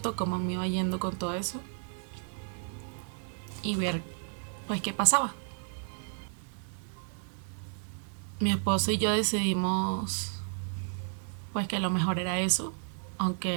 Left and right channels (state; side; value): silent; left; 56 dB below the other